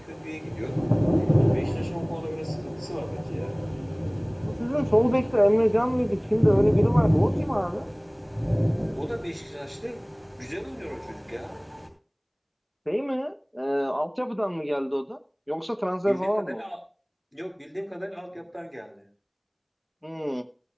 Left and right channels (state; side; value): identical; both; correlation 1.00